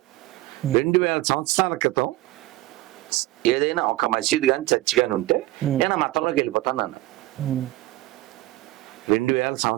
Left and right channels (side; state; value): left; quieter; 17.7 dB